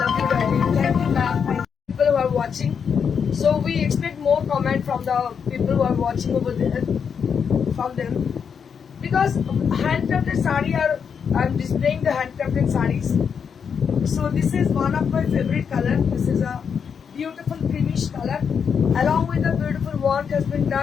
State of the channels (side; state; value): right; quieter; 6.8 dB